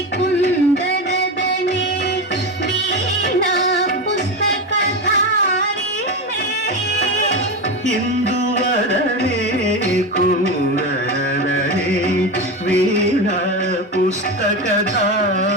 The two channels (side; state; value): both; normal; correlation 0.19